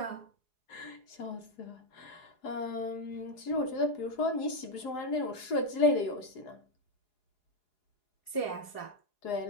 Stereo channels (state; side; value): late; right; 4.8 ms